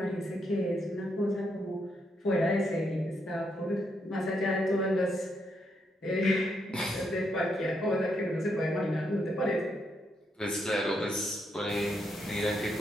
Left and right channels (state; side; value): normal; both; correlation 0.78